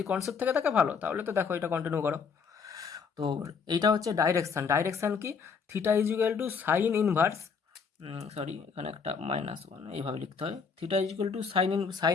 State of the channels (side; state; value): right; quieter; 5.8 dB